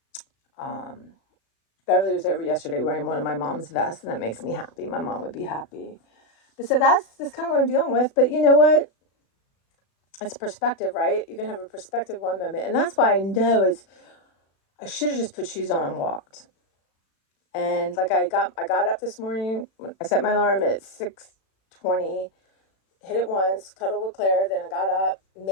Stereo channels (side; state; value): right; late; 36 ms